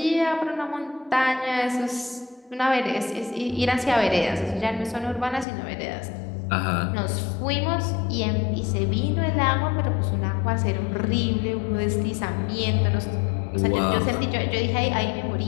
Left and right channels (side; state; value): right; drops out; at 5.5 s